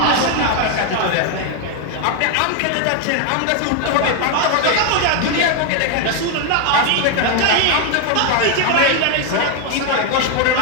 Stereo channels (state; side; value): different; both; correlation 0.01